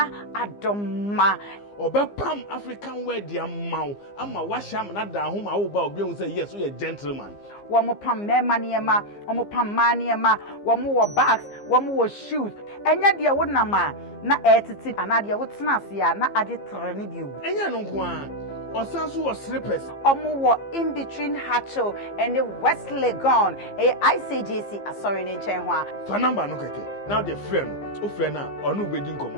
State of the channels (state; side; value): late; right; 15 ms